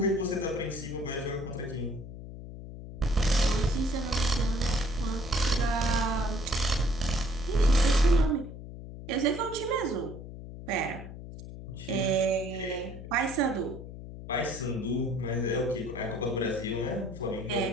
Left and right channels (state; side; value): noise; left; hum, 12 dB below the sound